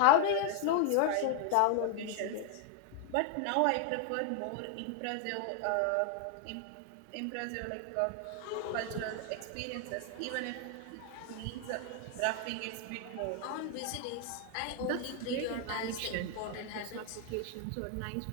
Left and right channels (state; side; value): different; both; correlation 0.00